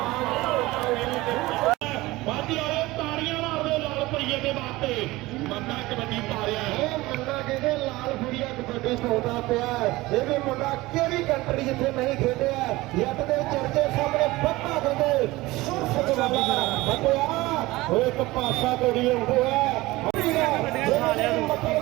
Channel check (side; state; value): left; quieter; 19.7 dB